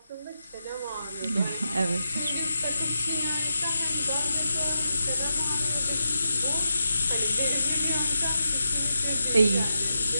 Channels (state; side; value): inverted; both; correlation -0.86